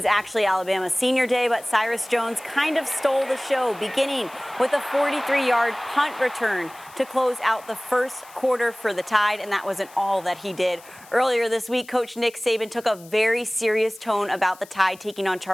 actually Alabama's senior day, but Cyrus Jones kind of stole the show, beginning with a 43-yard punt return to close out the first quarter for the Tide, and that wasn't all that he did. Earlier this week, Coach Nick Saban took a very serious tone about the Tide taking on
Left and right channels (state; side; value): noise; left; hiss, 22 dB below the sound